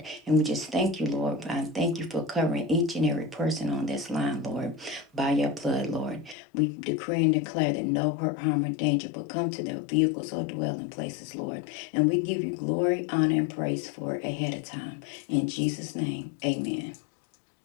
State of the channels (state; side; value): drops out; right; at 6.4 s